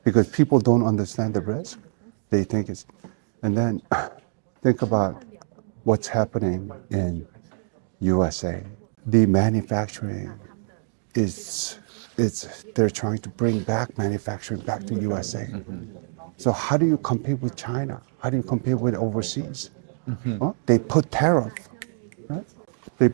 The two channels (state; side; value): silent; left; digital silence